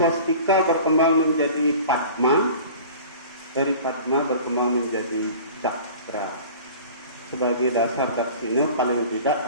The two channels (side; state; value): both; inverted; correlation -0.41